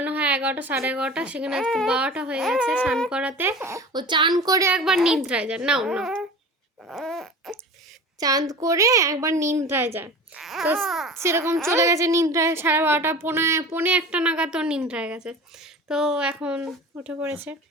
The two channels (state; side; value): normal; both; correlation 0.36